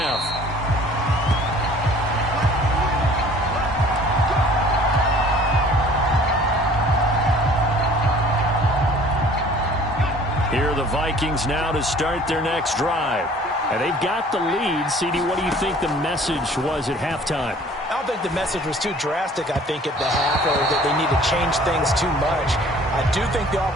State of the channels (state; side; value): normal; both; correlation 0.51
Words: Here are the Vikings now to start their next drive. And they've got the lead. CD, what do you think the message was at halftime? I don't think the message was too drastic, I think, at the half, or that they need to change things too much. I do think the